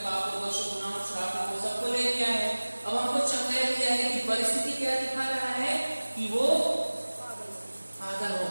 पापों दोषों गुनाहों श्रापों को सबको ले लिया है। अब हमको चंगाई दिया है कि परिस्थिति क्या दिखा रहा है कि वो पागल हो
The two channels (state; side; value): inverted; both; correlation -1.00